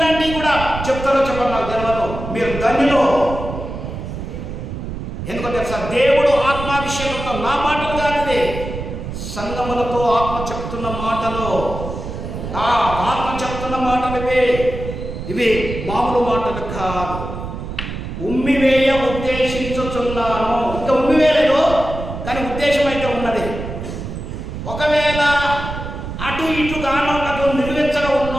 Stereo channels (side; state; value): right; noise; rumble, 7 dB below the sound